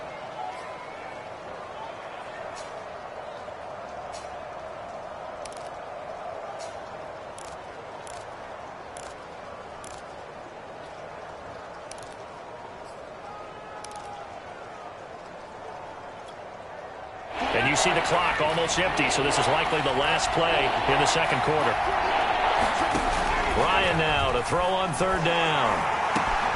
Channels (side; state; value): both; identical; correlation 1.00